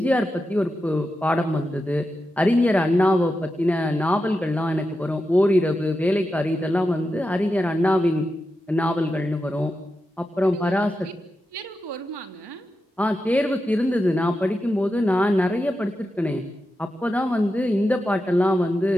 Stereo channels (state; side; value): normal; both; correlation 0.89